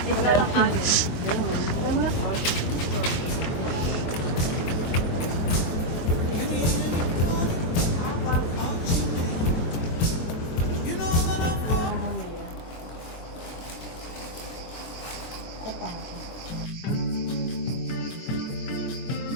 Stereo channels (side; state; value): right; late; 23 ms